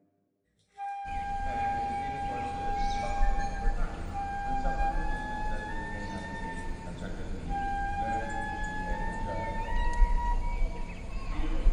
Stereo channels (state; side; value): identical; both; correlation 1.00